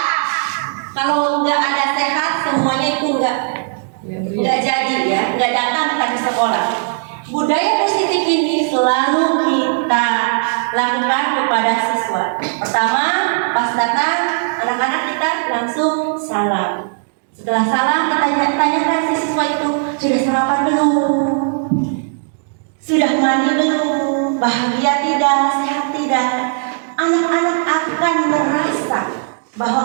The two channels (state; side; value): silent; left; digital silence